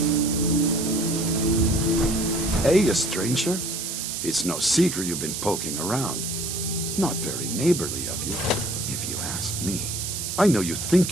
Hey, a stranger. It's no secret you've been poking around. Not very neighborly of you, if you ask me. I know you think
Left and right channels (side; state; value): right; noise; hiss, 4 dB below the sound